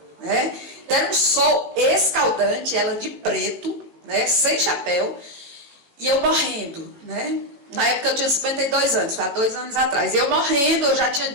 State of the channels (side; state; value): left; late; 18 ms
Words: né? Era um sol escaldante, ela de preto, né? Sem chapéu, e eu morrendo, né? Na época eu tinha 52 anos, foi há 2 anos atrás. Eu morrendo, eu já tinha